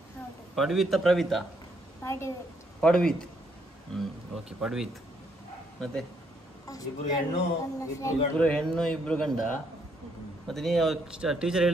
ಪ್ರವಿತಾ? ಪಡ್ವಿತ್. ಓಕೆ, ಪಡ್ವಿತ್. ಮತ್ತೆ ಇಬ್ರು ಹೆಣ್ಣು ಇಬ್ರು ಗಂಡ. ಮತ್ತೆ ನೀವು ಟೀಚರ್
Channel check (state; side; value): normal; both; correlation 0.72